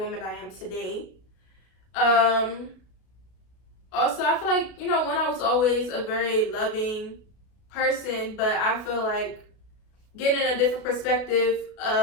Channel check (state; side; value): late; right; 32 ms